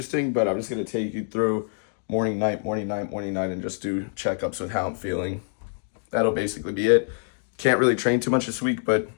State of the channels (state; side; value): silent; right; digital silence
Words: but I'm just gonna take you through morning, night, and just do checkups with how I'm feeling. That'll basically be it. Can't really train too much this week, but